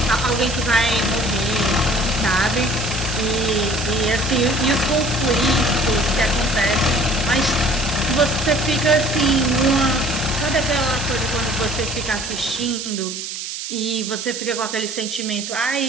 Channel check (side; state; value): right; noise; hiss, 7 dB below the sound